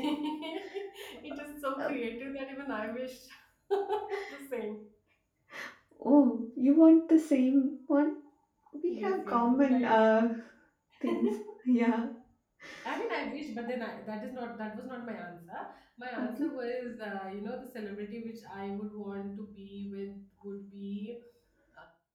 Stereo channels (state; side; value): identical; both; correlation 1.00